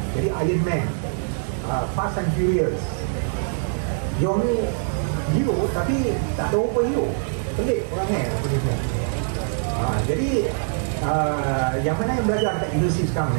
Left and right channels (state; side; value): silent; left; 63 dB below the other